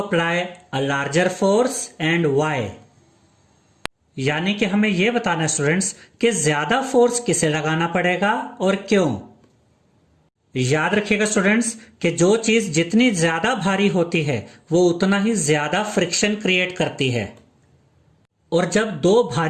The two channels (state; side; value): identical; both; correlation 1.00